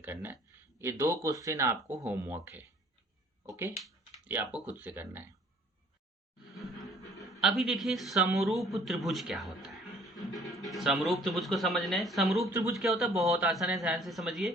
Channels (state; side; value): normal; both; correlation 0.55